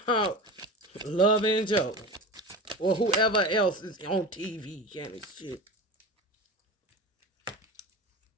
about? Love and Joe, or whoever else is on TV kind of shit.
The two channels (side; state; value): both; normal; correlation 0.28